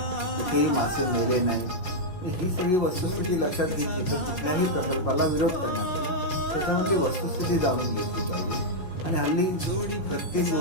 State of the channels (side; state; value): right; late; 5.4 ms